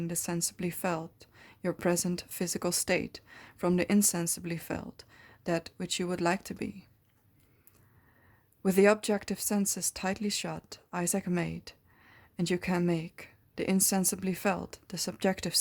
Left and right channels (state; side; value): identical; both; correlation 1.00